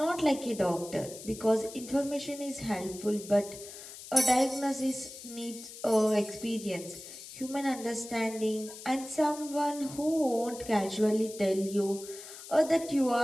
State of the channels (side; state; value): left; noise; hiss, 14 dB below the sound